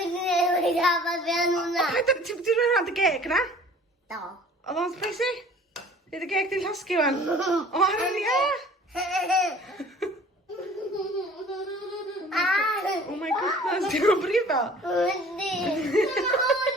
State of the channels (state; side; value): normal; both; correlation 0.49